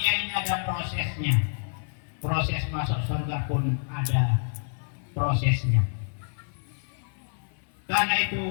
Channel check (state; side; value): silent; right; 56 dB below the other